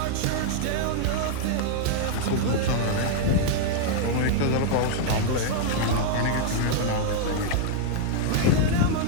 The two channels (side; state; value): both; different; correlation -0.01